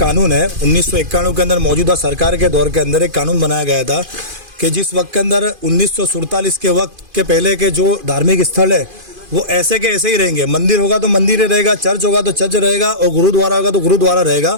है 1991 के अंदर मौजूदा सरकार के दौर के अंदर एक कानून बनाया गया था कि जिस वक्त के अंदर 1947 के वक्त के पहले के जो धार्मिक स्थल है वो ऐसे के ऐसे ही रहेंगे। मंदिर होगा तो मंदिर ही रहेगा, चर्च होगा तो चर्च रहेगा और गुरुद्वारा होगा तो गुरुद्वारा रहेगा।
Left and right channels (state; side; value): late; left; 2.5 ms